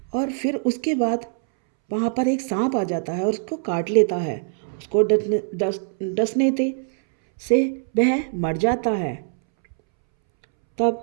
और फिर उसके बाद वहाँ पर एक सांप आ जाता है और उसको काट लेता है। उसको डसने से वह मर जाता है। तब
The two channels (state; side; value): silent; left; 64 dB below the other